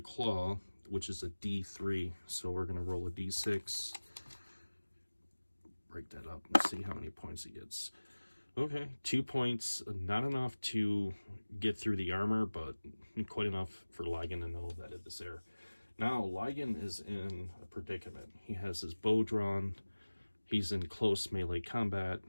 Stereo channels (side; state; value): both; inverted; correlation -1.00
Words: claw, which is a D3. So we're going to roll a D6. Break that up and see how many points it gets. Okay, 2 points, not enough to get through the armor, but quite enough for Ligon to know that it is there. Now, Ligon is in a predicament. He has his bow drawn, he's in close melee combat,